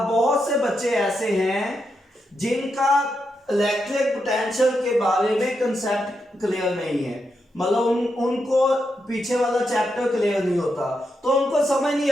बहुत से बच्चे ऐसे हैं जिनका इलेक्ट्रिक पोटेंशियल के बारे में कंसेप्ट क्लियर नहीं है, मतलब उनको पीछे वाला चैप्टर क्लियर नहीं होता, तो उनको समझ नहीं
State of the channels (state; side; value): normal; both; correlation 0.84